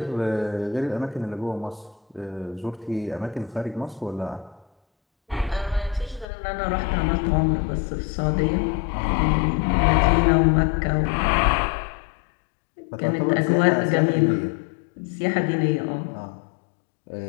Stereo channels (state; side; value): drops out; right; at 6.2 s